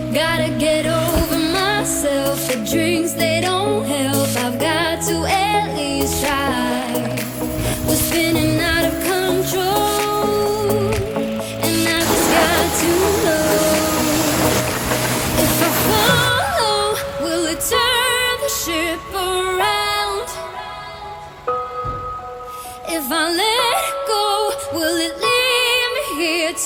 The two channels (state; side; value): identical; both; correlation 1.00